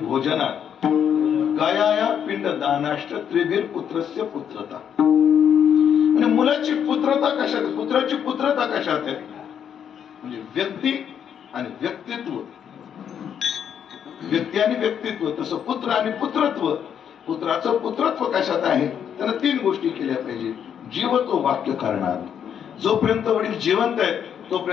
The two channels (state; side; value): quieter; right; 8.5 dB